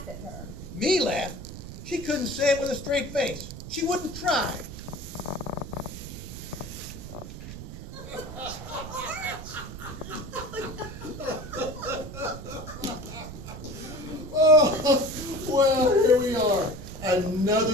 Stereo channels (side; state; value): right; noise; rumble, 11 dB below the sound